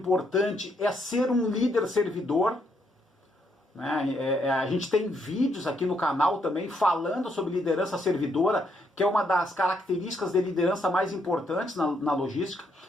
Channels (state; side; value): normal; both; correlation 0.75